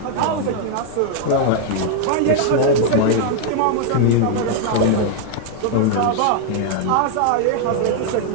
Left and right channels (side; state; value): both; different; correlation -0.01